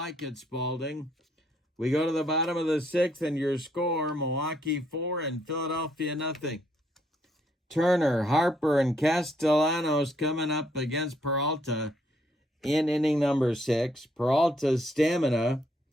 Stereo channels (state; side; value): normal; both; correlation 0.71